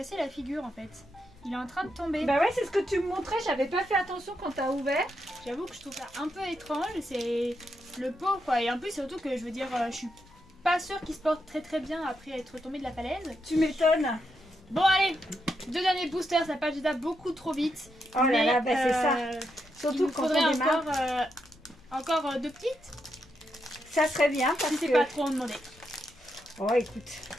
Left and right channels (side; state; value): left; noise; rumble, 27 dB below the sound